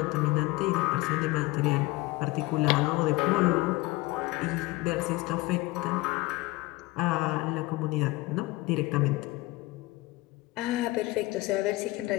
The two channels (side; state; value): right; quieter; 20.5 dB